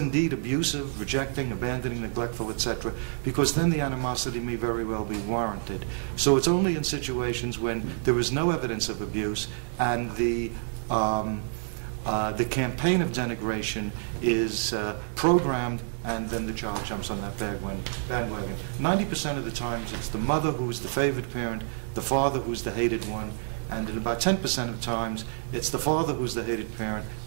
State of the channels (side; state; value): left; silent; digital silence